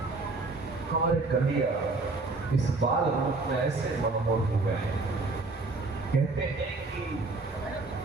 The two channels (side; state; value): left; quieter; 3.5 dB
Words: हमारे कन्हैया इस बाल रूप में ऐसे मनमोहक हो गए हैं। कहते हैं कि